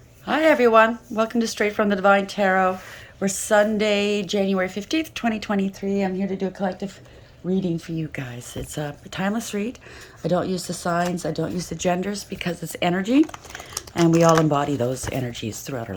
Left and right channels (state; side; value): identical; both; correlation 1.00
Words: Hi everyone, welcome to Straight from the Divine Tarot. We're Sunday, January 15th, 2023. I'm here to do a collective reading for you guys. It's a timeless read. I don't use the signs, I don't use the genders because it's energy and we all embody those energies throughout our